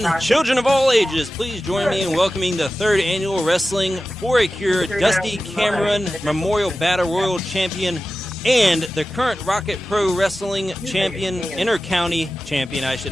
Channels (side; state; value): both; normal; correlation 0.94